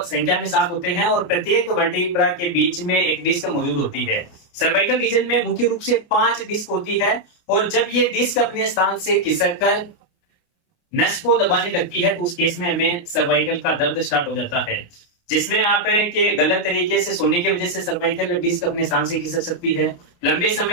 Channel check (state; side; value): late; right; 29 ms